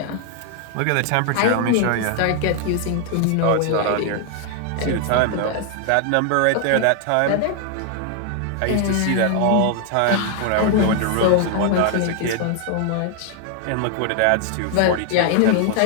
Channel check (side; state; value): both; different; correlation 0.00